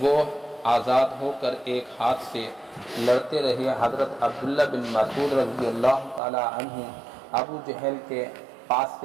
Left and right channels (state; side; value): drops out; left; at 6.2 s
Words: وہ آزاد ہو کر ایک ہاتھ سے لڑتے رہے۔ حضرت عبداللہ بن مسعود رضی اللہ تعالی عنہ ابو جہل کے پاس